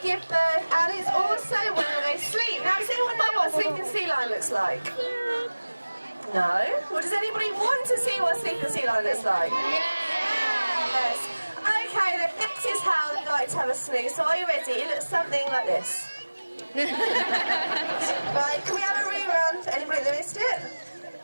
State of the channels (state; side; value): inverted; both; correlation -1.00